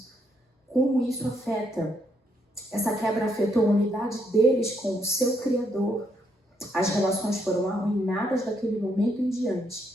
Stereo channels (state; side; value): normal; both; correlation 0.75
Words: Como isso afeta, essa quebra afetou a unidade deles com o seu Criador. As relações foram arruinadas daquele momento em